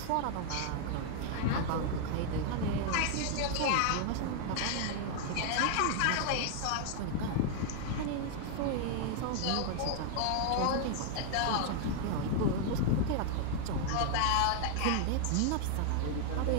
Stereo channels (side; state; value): both; different; correlation 0.00